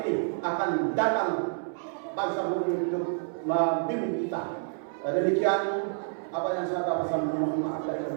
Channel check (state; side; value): silent; left; 59 dB below the other